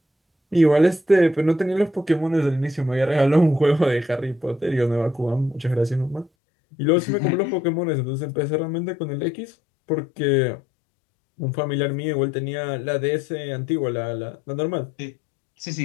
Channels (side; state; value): right; drops out; at 6.3 s